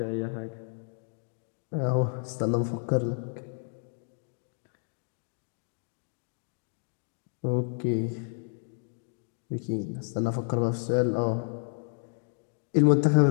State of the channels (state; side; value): silent; right; digital silence